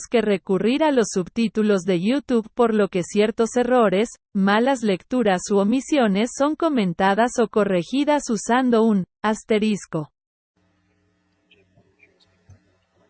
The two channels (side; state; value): both; identical; correlation 1.00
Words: que recurrir a los subtítulos de YouTube, por lo que ciertos errores, malas lecturas u omisiones son comentadas o corregidas usando un asterisco.